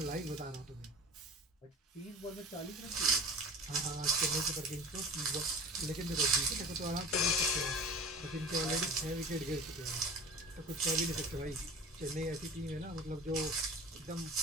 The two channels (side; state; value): both; normal; correlation 0.38